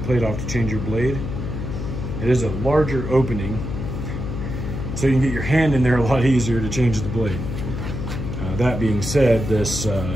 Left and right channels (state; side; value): noise; left; hum, 5 dB below the sound